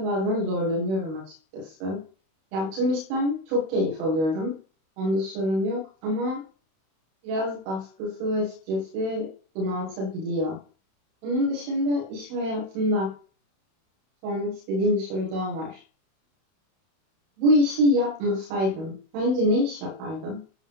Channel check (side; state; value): left; late; 31 ms